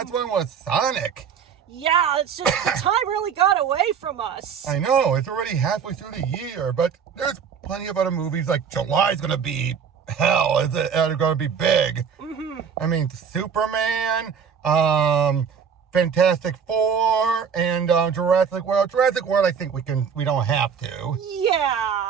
one was Sonic. Yeah, it's just the time really got away from us. I know, it's already halfway through the year, but there's plenty of other movies. Like July's gonna be hell. It's gonna be big. I mean, Superman, Fantastic Four, and Jurassic World. Jurassic World, I think we don't have to.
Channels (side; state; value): left; quieter; 7.0 dB